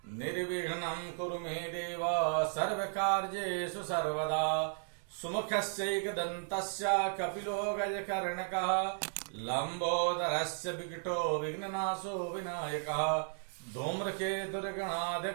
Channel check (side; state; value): left; silent; digital silence